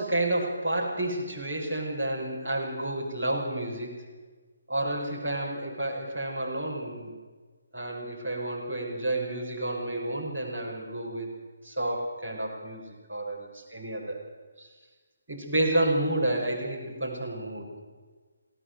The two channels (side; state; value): both; inverted; correlation -0.76